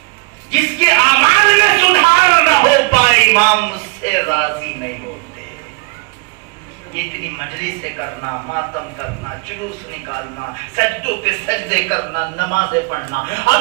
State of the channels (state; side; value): quieter; left; 28.1 dB